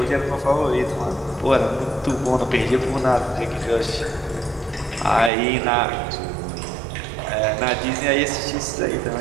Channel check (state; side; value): drops out; left; at 5.3 s